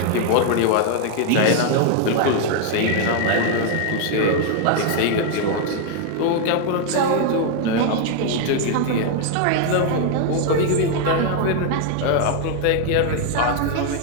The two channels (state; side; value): different; both; correlation 0.00